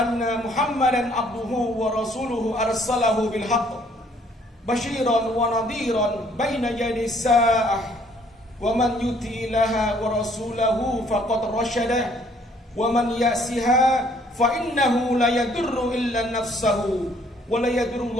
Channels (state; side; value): normal; both; correlation 0.62